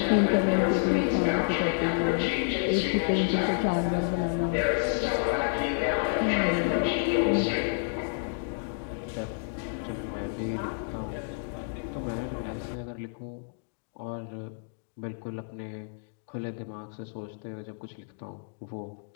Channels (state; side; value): silent; right; digital silence